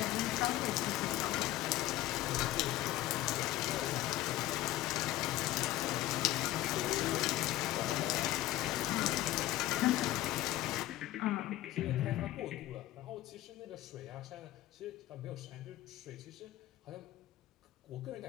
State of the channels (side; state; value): right; quieter; 15.5 dB